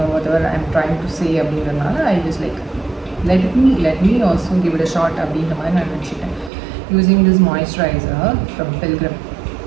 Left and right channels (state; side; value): drops out; left; at 6.5 s